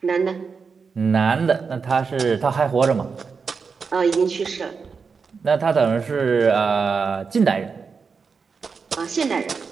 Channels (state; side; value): quieter; left; 5.3 dB